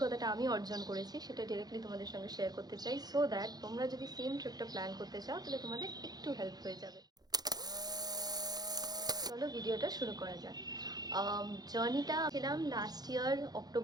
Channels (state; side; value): late; left; 0.19 ms